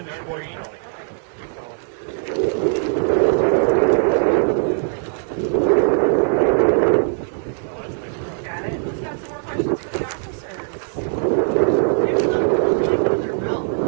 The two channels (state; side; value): silent; left; digital silence